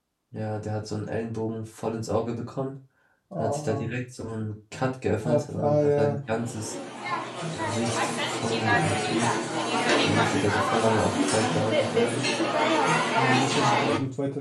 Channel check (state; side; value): identical; both; correlation 1.00